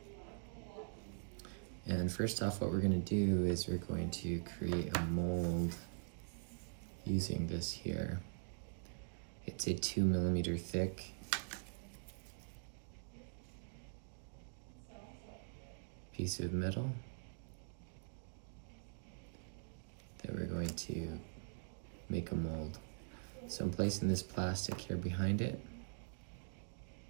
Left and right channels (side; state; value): left; silent; digital silence